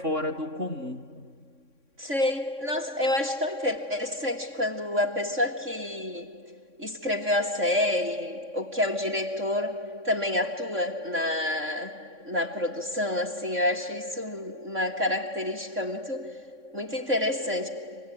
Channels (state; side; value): late; left; 3.6 ms